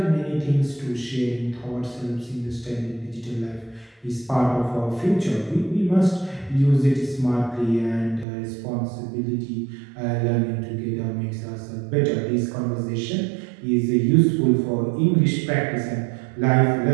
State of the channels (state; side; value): drops out; left; at 8.2 s